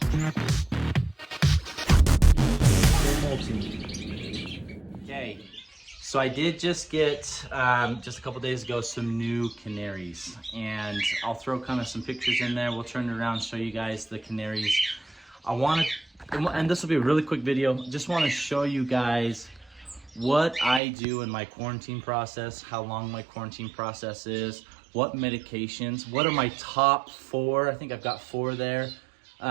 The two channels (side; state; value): left; drops out; at 20.8 s